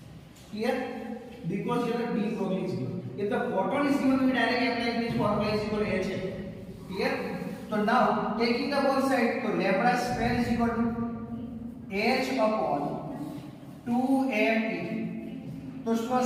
Here, because here the de Broglie is given. If the photon is given, we directly apply this formula is equal to h. Clear? So now taking the both side, so lambda square is equal to h upon 2m. So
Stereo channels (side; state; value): both; identical; correlation 1.00